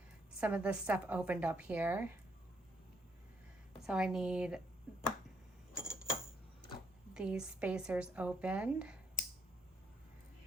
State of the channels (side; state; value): both; normal; correlation 0.73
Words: some of this stuff opened up here. So I need these spacers opened.